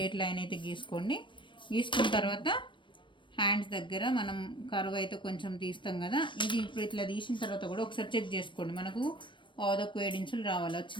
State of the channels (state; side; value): late; right; 0.24 ms